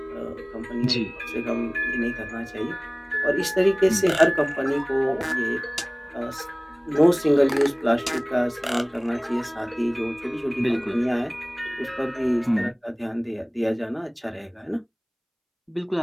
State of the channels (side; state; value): both; identical; correlation 1.00